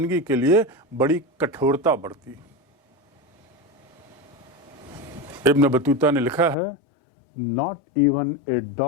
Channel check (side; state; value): right; drops out; at 6.6 s